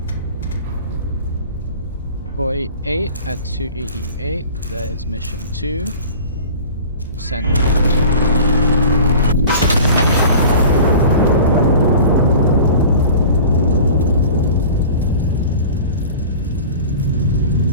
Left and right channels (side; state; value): both; inverted; correlation -0.40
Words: 48 at 288. That is mission 2. Send it.